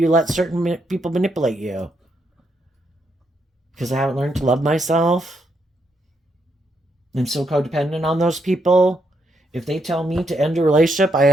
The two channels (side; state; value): both; normal; correlation 0.78